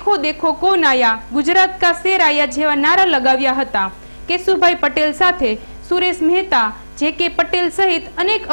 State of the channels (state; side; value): inverted; both; correlation -1.00